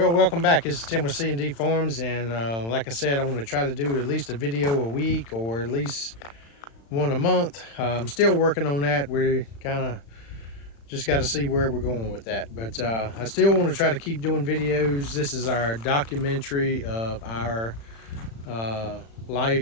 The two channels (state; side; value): late; right; 35 ms